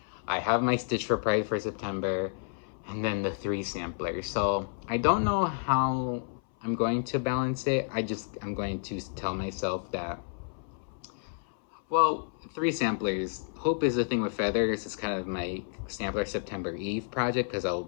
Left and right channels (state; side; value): silent; right; 58 dB below the other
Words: I have my stitch for Pride for September, and then the 3 samplers. So I don't know how I'm going to balance it. I'm going to tell myself that, well, 3 samplers. Hope is the thing with feathers. It's kind of my sampler September Eve project, because I'll